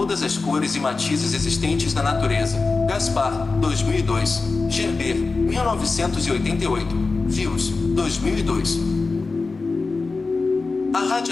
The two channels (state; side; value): quieter; right; 3.9 dB